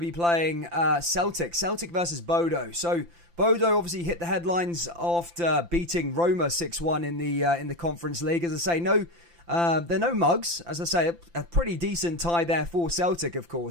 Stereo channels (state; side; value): late; left; 5.8 ms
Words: playing Celtic. Celtic versus Bodo. So Bodo obviously hit the headlines after beating Roma 6-1 in the Conference League. As I say, they're no mugs. As I say, a pretty decent tie there for Celtic, of